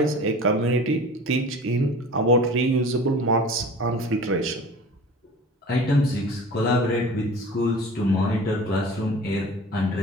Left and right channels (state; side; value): normal; both; correlation 0.40